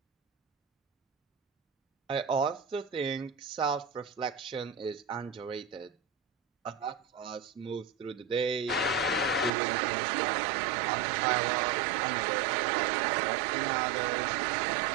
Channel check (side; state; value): left; drops out; at 9.5 s